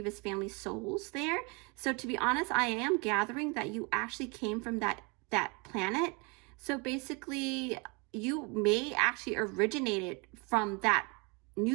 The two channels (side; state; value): left; quieter; 30.5 dB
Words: family souls there. So to be honest, I am gathering that you actually came from that planet. So basically, you may actually originated from that